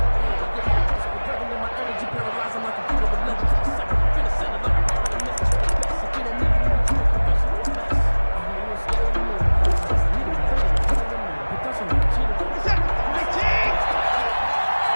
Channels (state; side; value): inverted; both; correlation -1.00